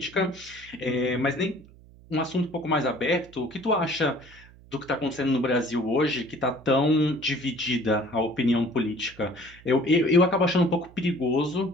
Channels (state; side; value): noise; right; hum, 23 dB below the sound